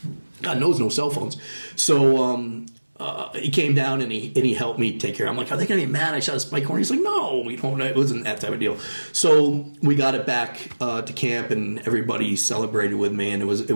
God knows no cell phones. So he came down and he helped me take care. I'm like, are they gonna get mad I shot a spike horn? He's like, no, it wasn't that type of deal. So we got it back to camp and everybody celebrated with me and it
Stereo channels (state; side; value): inverted; both; correlation -1.00